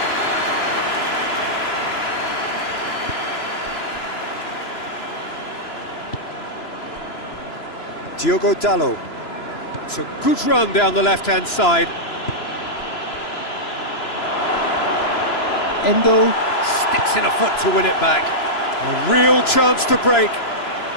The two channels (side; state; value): right; late; 3.0 ms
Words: Diogo Dalot. It's a good run down the left-hand side. Endo sticks in a foot to win it back. A real chance to break.